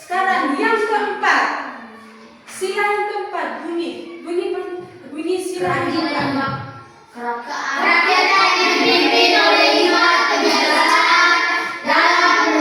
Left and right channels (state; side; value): identical; both; correlation 1.00